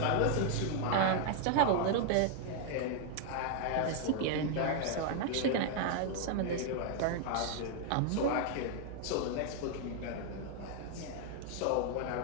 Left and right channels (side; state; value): both; different; correlation 0.00